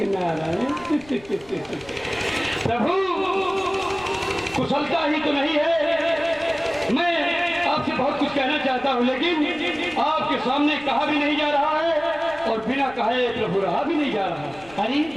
नारायण। प्रभु कुशलता ही तो नहीं है। मैं आपसे बहुत कुछ कहना चाहता हूँ, लेकिन आपके सामने कहा भी नहीं जा रहा है और बिना कहे प्रभु रहा भी नहीं जा रहा है। अरे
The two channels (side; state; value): left; noise; rumble, 24 dB below the sound